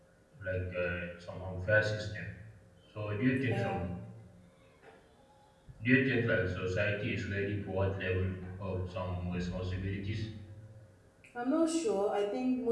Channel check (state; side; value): identical; both; correlation 1.00